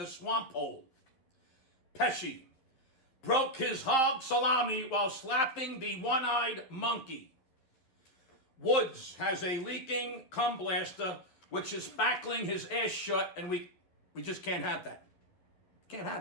swamp hole. Pesci broke his hog salami while slapping the one-eyed monkey. Woods has a leaking cum blaster which is spackling his ass shut, and we just can't have that. Can't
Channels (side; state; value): right; late; 11 ms